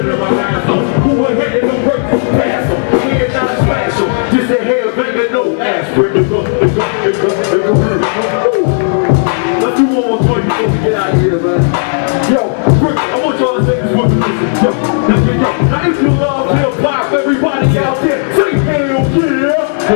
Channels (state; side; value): silent; right; digital silence